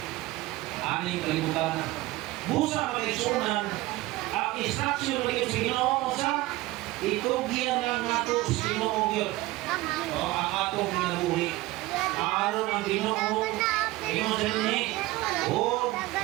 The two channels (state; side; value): quieter; left; 18.7 dB